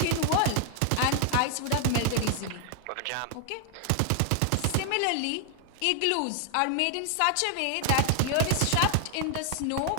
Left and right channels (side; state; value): both; different; correlation 0.00